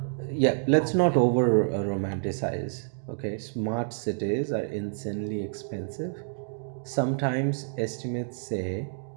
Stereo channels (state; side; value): silent; left; digital silence